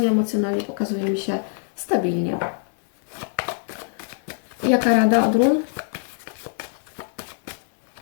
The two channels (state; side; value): silent; right; digital silence